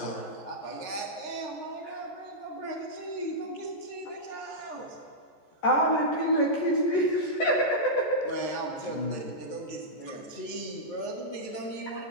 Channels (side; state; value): right; late; 14 ms